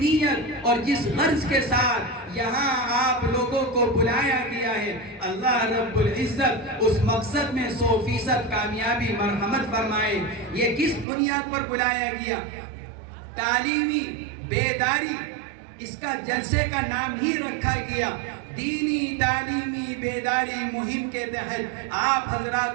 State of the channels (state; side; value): drops out; left; at 11.1 s